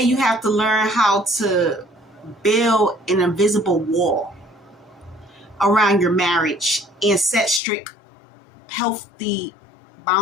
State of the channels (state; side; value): drops out; right; at 7.6 s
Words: you have to learn how to build an invisible wall around your marriage and set strict, healthy